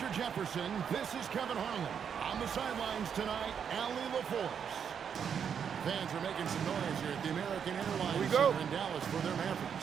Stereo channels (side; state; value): left; quieter; 7.5 dB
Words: Jefferson, this is Kevin Harlan. On the sidelines tonight, Allie LaForce. Fans are making some noise here at the American Airlines Center in Dallas for their